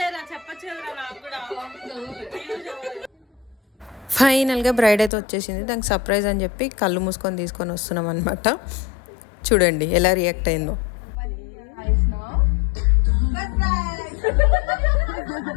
ఫైనల్గా బ్రైడ్ అయితే వచ్చేసింది. దానికి సర్ప్రైజ్ అని చెప్పి కళ్ళు మూసుకొని తీసుకొని వస్తున్నాం అనమాట. చూడండి ఎలా రియాక్ట్ అయిందో.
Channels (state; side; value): drops out; right; at 5.1 s